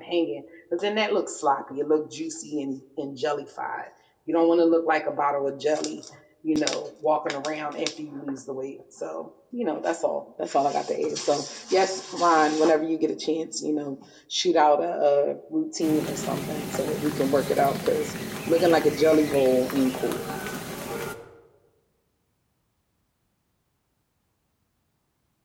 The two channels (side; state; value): both; identical; correlation 1.00